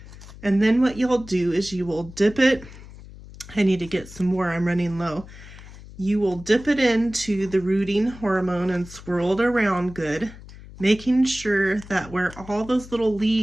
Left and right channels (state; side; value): noise; left; hum, 17 dB below the sound